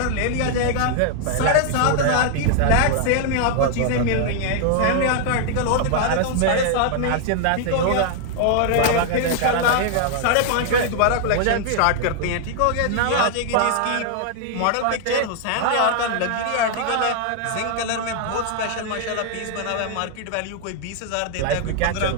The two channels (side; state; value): both; different; correlation 0.00